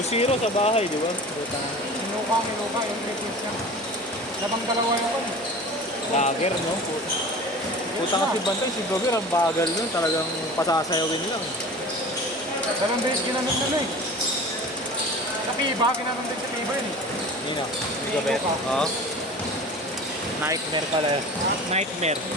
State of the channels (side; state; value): both; normal; correlation 0.38